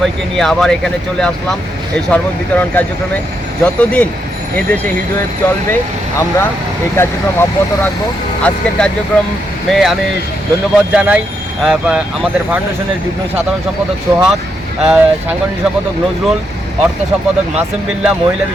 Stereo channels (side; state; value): both; normal; correlation 0.80